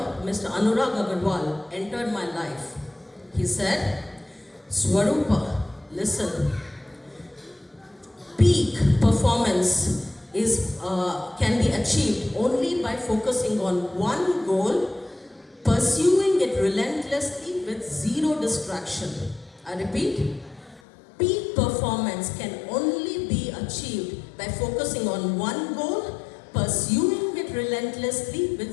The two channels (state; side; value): drops out; right; at 20.8 s